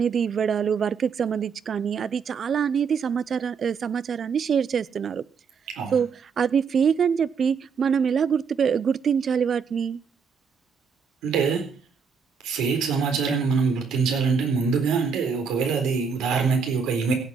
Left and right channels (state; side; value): quieter; left; 6.0 dB